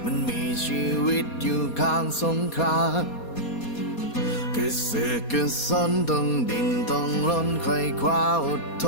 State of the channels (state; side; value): late; right; 4.2 ms